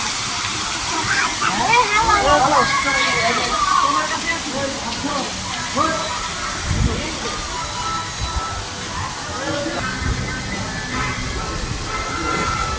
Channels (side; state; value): both; identical; correlation 1.00